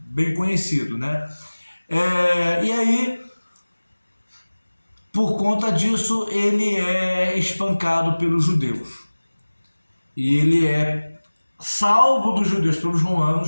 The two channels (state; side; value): inverted; both; correlation -1.00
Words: conhecido, né? E aí, por conta disso, ele é espancado pelos judeus. E ele é salvo dos judeus pelos